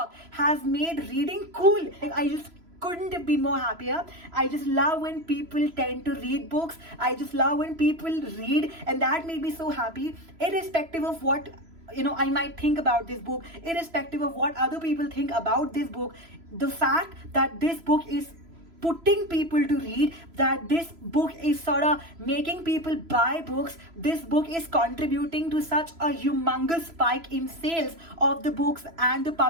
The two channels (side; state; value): left; late; 3.0 ms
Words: has made reading cool. I just couldn't have been more happier. I just love when people tend to read books. I just love when people read, and that made me so happy, irrespective of what I might think about this book, irrespective of what other people think about this book. The fact that this book is putting people to read, that this book is sort of making people buy books, this book is contributing to such a humongous spike in sales of the books and the